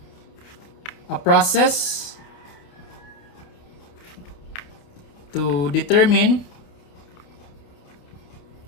a process to determine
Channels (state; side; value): late; right; 28 ms